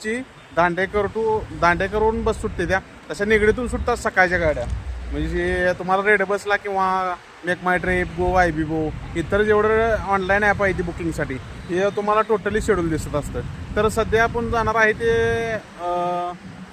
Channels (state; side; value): identical; both; correlation 1.00